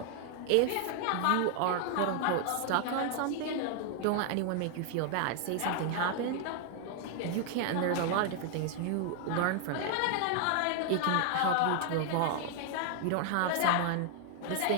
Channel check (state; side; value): different; both; correlation 0.00